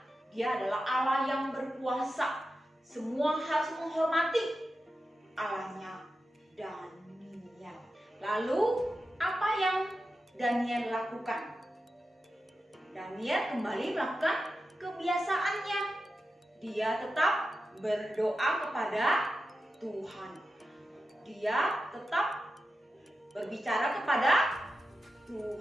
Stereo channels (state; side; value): normal; both; correlation 0.91